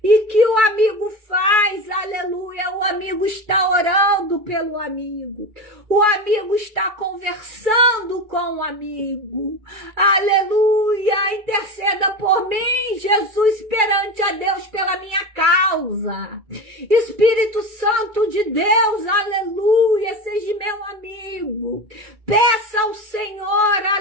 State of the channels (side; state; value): left; late; 2.3 ms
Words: E que o amigo faz, aleluia, o amigo está orando pelo amigo. O amigo está conversando com o amigo. Aleluia, interceda por mim, Jesus, perante a Deus pela minha causa. Espírito Santo de Deus, aleluia, seja meu amigo. Peça ao Senhor,